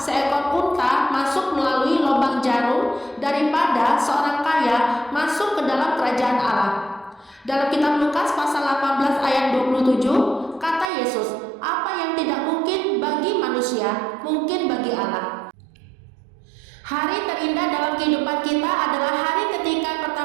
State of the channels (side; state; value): left; drops out; at 10.9 s